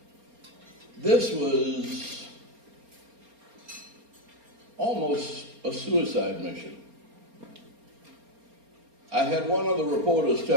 this was almost a suicide mission. I had one of the reporters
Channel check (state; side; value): late; left; 4.3 ms